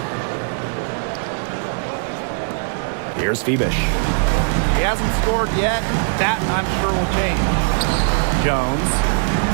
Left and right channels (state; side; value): silent; left; 65 dB below the other